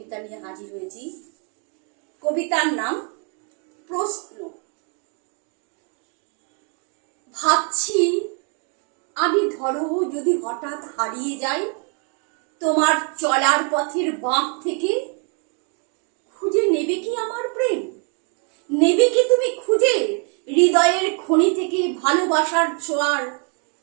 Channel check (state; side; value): quieter; left; 39.0 dB